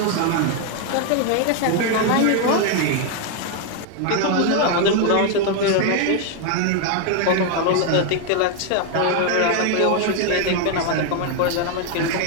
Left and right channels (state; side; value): different; both; correlation 0.01